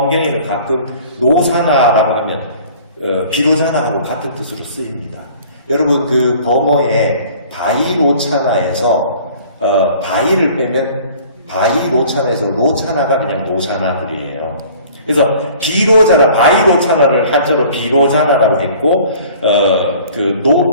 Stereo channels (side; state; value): both; inverted; correlation -0.49